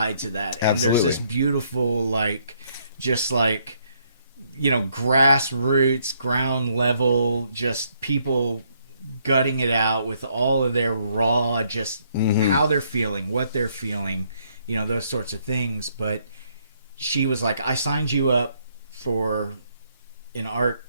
to that. And Absolutely. There's this beautiful, like, just like, grassroots, ground level, just people gutting it out with all of their raw, just how they're feeling, what they're feeling, those sorts of things. But she was like, I signed you up for an art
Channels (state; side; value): inverted; both; correlation -0.71